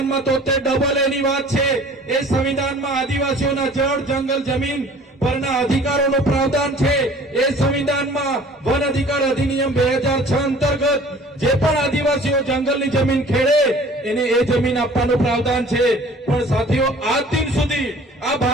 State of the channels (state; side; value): normal; both; correlation 0.49